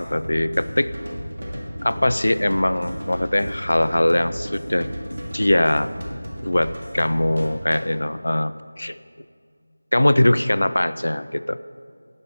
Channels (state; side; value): inverted; both; correlation -1.00